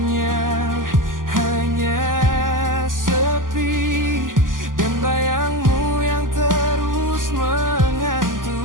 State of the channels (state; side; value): late; left; 0.89 ms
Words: hanya sepi dan bayangmu yang terus